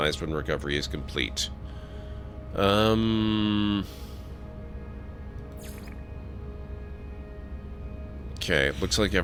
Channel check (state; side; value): identical; both; correlation 1.00